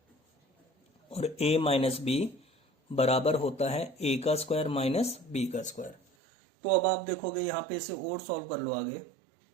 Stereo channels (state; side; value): drops out; left; at 6.0 s